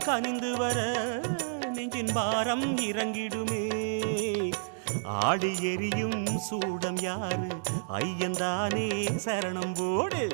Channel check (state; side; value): silent; left; digital silence